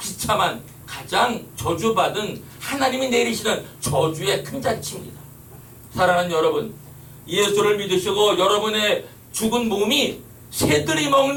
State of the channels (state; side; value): identical; both; correlation 1.00